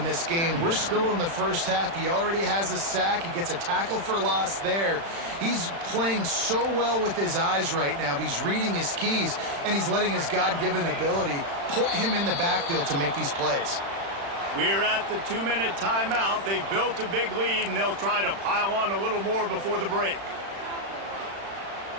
this game. We're still in the first half. He already has a sack. He gets a tackle for loss there. He's playing so well with his eyes right now. He's reading his keys, and he's letting his God-given ability put him in the backfield to make these plays. We're at the 2-minute timeout. They've built a big lead, and they'll try to pile on a little more before the break.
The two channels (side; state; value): left; late; 36 ms